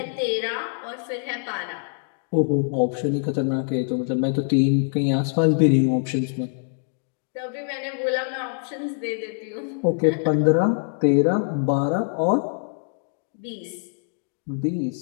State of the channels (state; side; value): silent; right; 59 dB below the other